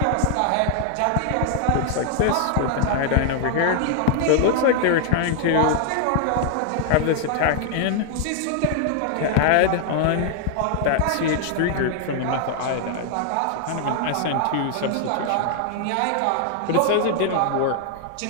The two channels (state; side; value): different; both; correlation 0.00